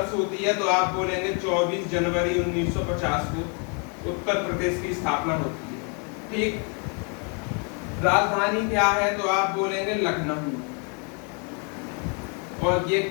होती है तो आप बोलेंगे 24 जनवरी 1950 को उत्तर प्रदेश की स्थापना होती है। ठीक, राजधानी क्या है तो आप बोलेंगे लखनऊ, और ये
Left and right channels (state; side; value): quieter; right; 37.7 dB